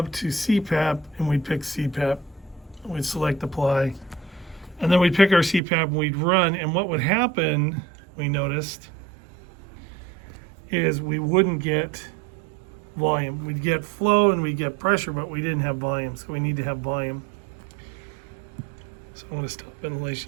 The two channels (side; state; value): left; drops out; at 5.6 s